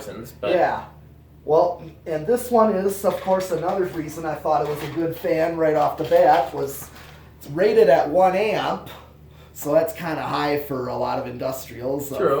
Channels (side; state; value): both; identical; correlation 1.00